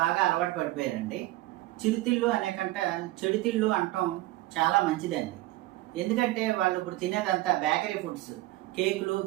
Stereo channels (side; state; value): left; quieter; 17.8 dB